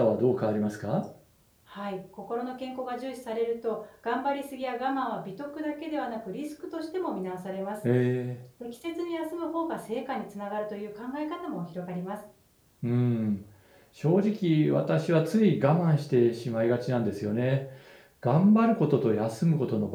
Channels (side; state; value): both; identical; correlation 1.00